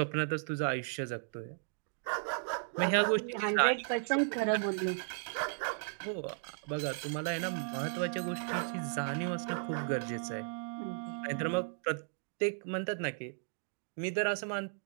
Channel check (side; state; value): left; silent; digital silence